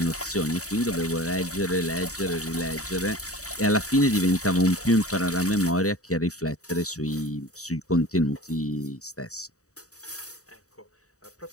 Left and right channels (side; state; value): right; late; 0.66 ms